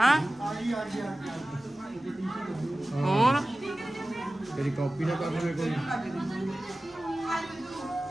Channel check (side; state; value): both; normal; correlation 0.96